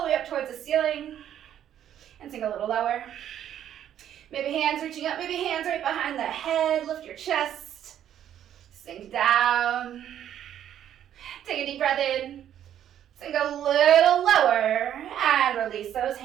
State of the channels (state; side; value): quieter; left; 10.5 dB